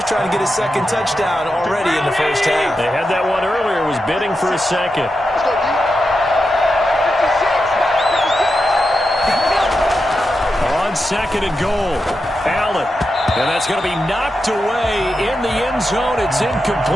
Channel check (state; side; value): normal; both; correlation 0.88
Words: trying to get his 2nd touchdown already in the first half. They had that one earlier, was bidding for a 2nd. On 2nd and goal, Allen. And that's going to be knocked away in the end zone. It's